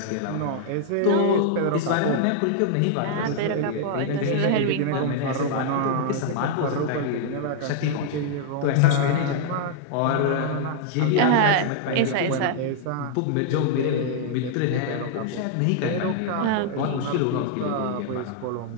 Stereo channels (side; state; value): both; different; correlation -0.01